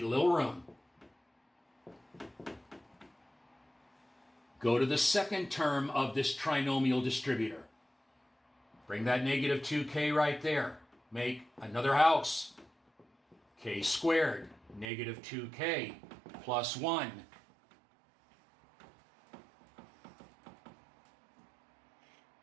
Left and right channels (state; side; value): drops out; left; at 14.9 s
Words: a little room. Go to the second term of this trinomial distributor. Bring that -2k right there. Make another house. K squared, -2k plus 1.